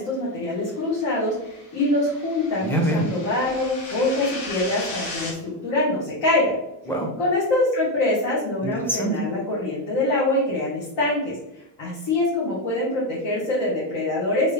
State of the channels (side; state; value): both; normal; correlation 0.09